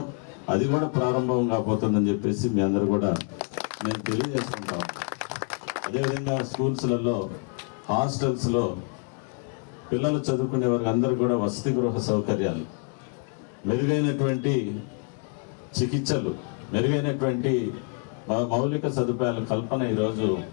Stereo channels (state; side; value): quieter; right; 39.4 dB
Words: అది కూడా ప్రారంభం కాబోతుందని చెప్పేసి మీ అందరూ కూడా నేను తెలియజేసుకుంటాం. అదేవిధంగా స్కూల్స్లలో, హాస్టల్స్లో పిల్లలు చదువుకునే వారికి అందరూ కూడా వసతి గృహ సౌకర్యాలు, మెరుగైనటువంటి చికిత్సలు, మెరుగైనటువంటి మౌలిక సదుపాయాల కల్పన ఈరోజు